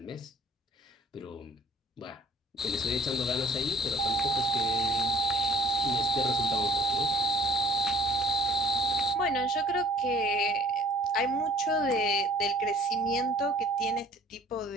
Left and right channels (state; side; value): normal; both; correlation 0.50